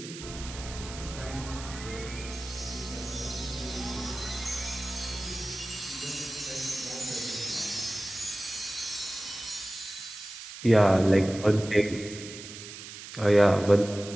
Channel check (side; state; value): right; noise; hiss, 12 dB below the sound